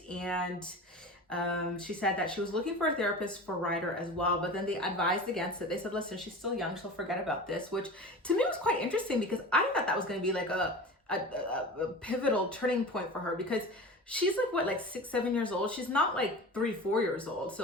and she said that she was looking for a therapist for Ryder as well, but then they advised against it. They said, listen, she's still young, she'll forget about this, which to me was quite interesting because I thought that was going to be like a pivotal turning point for her, because she's like, what, like 6-7 years old? She's not like 3-4 years old.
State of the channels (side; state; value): both; normal; correlation 0.34